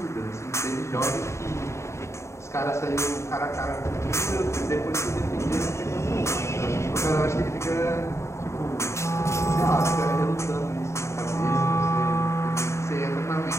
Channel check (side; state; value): right; late; 0.14 ms